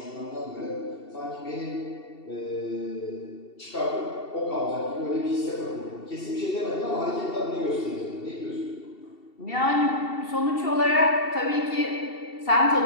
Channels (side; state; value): right; late; 2.7 ms